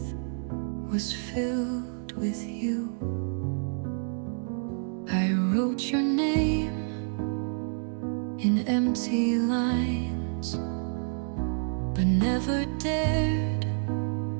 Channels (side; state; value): left; silent; digital silence